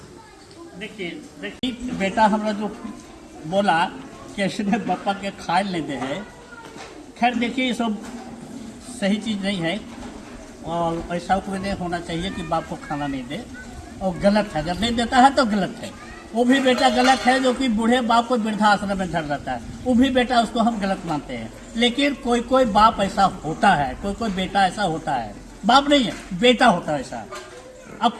देखिए बेटा हमरा जो बोला कि इसने पापा के खाए नहीं दे है, खैर देखिए ये सब सही चीज़ नहीं है और ऐसा कोई नहीं होना चाहिए कि बाप को खाना नहीं दे, और गलत है, अगर नहीं देता है तो गलत है। वो भी बेटा गलत है जो कि बूढ़े बाप को वृद्धाश्रम में धर रहता है, वो भी बेटा उसको हम गलत मानते हैं। लेकिन कोई कोई बाप ऐसा होता है, कोई कोई बेटा ऐसा होता है, बाप नहीं है बेटा होता है ऐसा। अब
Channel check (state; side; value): identical; both; correlation 1.00